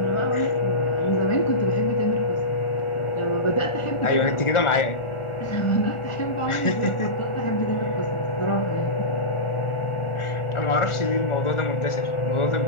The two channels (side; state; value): right; late; 1.4 ms